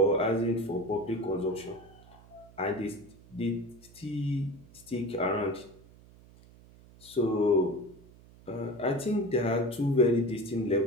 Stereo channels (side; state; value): right; noise; hum, 23 dB below the sound